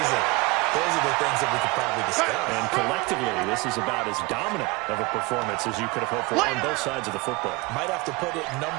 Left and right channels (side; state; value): left; quieter; 25.0 dB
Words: Those are the things that we could probably discuss. And collectively, this is about as dominant of a performance as you could have hoped for on both sides of the football. Might have to put it #1